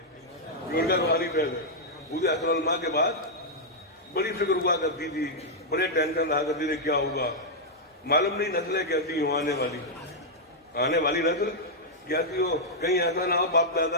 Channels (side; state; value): both; normal; correlation -0.05